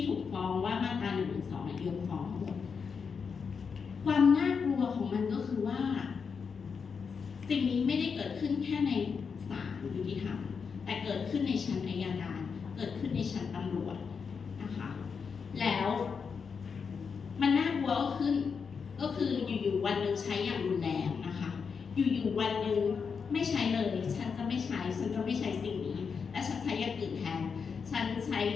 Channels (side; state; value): right; quieter; 5.9 dB